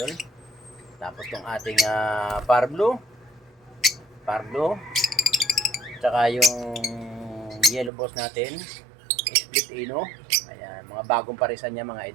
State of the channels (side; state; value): left; drops out; at 7.9 s